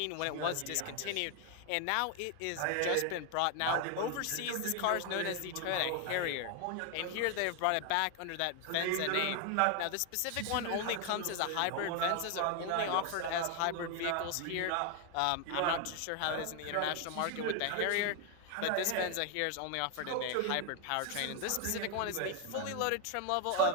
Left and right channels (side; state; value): both; different; correlation 0.01